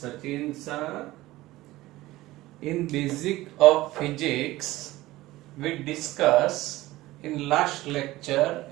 sir. In Basic of Physics, we discuss in last lecture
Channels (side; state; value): left; quieter; 17.6 dB